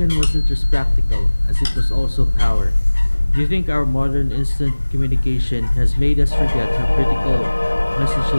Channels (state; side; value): inverted; both; correlation -1.00